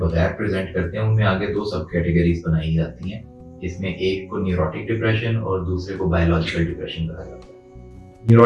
प्रेजेंट करते हैं उनमें आगे दो सब कैटेगरीज बनाई जाती हैं, जिसमें एक को न्यूरोटिक डिप्रेशन और दूसरे को बायोलॉजिकल डिप्रेशन कहा जाता है।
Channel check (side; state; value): both; identical; correlation 1.00